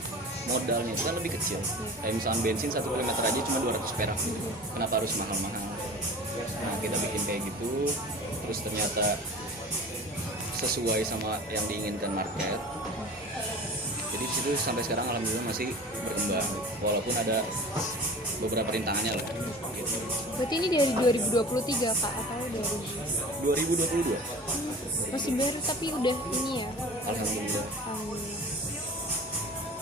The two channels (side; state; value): both; normal; correlation 0.39